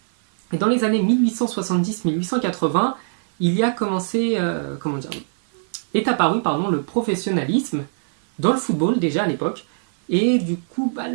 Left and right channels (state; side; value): silent; left; 56 dB below the other